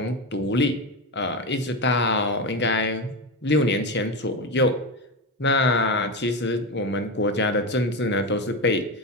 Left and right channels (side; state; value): both; normal; correlation 0.16